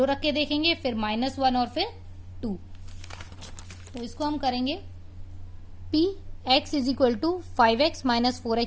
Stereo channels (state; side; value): identical; both; correlation 1.00